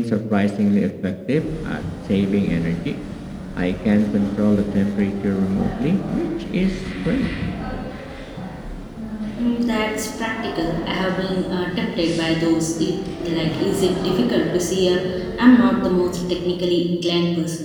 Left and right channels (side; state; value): both; identical; correlation 1.00